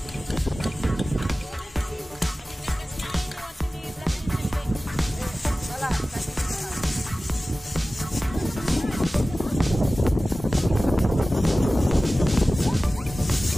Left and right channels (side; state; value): both; normal; correlation 0.97